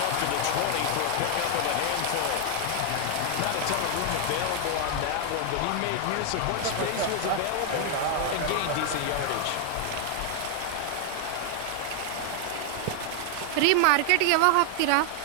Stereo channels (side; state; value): both; different; correlation 0.00